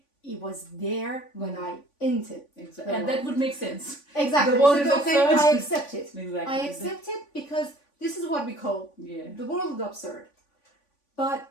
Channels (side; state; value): right; late; 3.5 ms